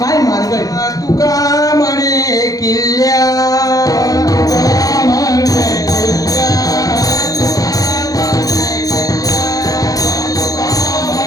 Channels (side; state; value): right; late; 0.17 ms